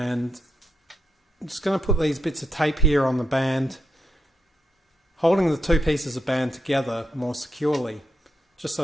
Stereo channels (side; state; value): both; normal; correlation 0.82